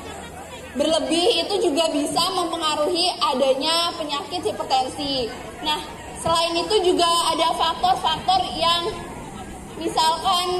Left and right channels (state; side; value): identical; both; correlation 1.00